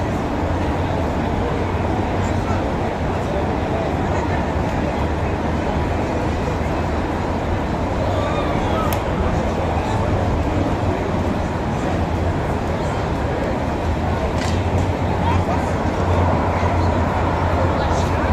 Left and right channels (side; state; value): both; identical; correlation 1.00